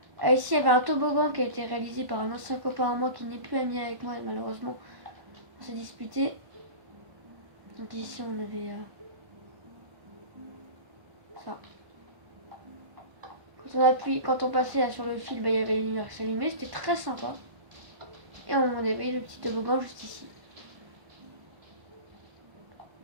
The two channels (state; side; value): late; left; 1.1 ms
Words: Ici, il y avait un toboggan qui a été réalisé par un ancien copain à moi qui n'est plus ami avec moi, malheureusement. On s'est disputé. Donc ici, on avait ça. Quand on passait là, sur le fil, bah, il y avait une lumière qui s'allumait, c'était très sympa. Et on avait le petit toboggan juste ici.